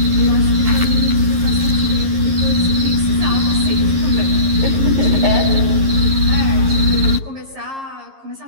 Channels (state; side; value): late; left; 11 ms